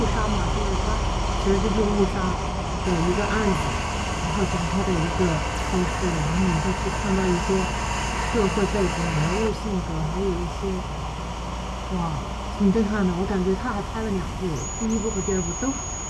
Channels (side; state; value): both; identical; correlation 1.00